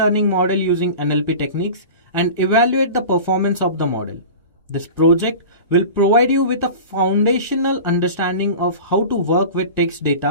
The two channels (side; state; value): both; inverted; correlation -0.35